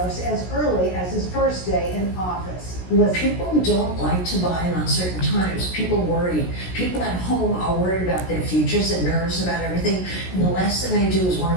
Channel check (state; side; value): late; right; 16 ms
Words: as early as his first day in office. People don't like to buy in uncertain times. People worry. People at home are worried about their futures and nervous about everything. And the last thing they do is want